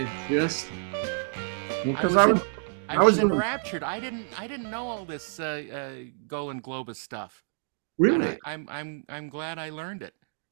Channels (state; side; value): silent; left; digital silence